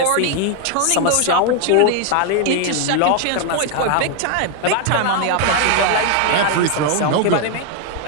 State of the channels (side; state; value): both; different; correlation 0.01